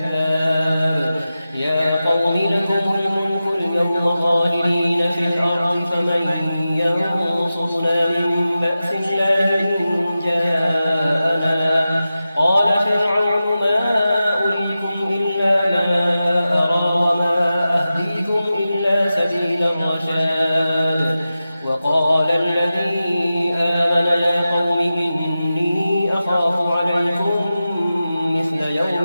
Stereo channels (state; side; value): inverted; both; correlation -0.93